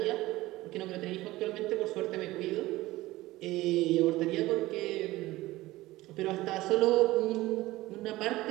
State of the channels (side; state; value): left; quieter; 17.9 dB